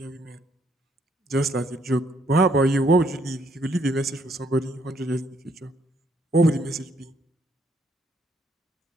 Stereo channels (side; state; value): both; normal; correlation 0.70